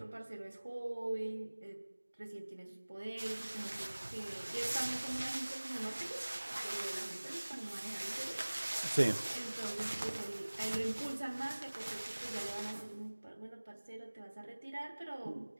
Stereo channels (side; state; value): both; inverted; correlation -1.00